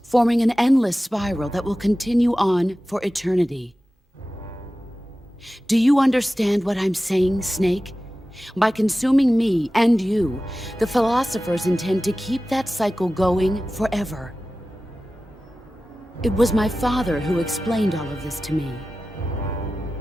forming an endless spiral that will continue on for eternity. Do you understand what I'm saying, Snake? By consuming me and you, the philosophers intend to keep that cycle going forever. It was my father who explained all of this to me.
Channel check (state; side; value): normal; both; correlation 0.95